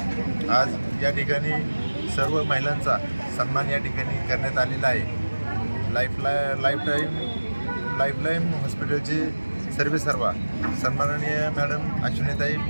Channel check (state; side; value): inverted; both; correlation -1.00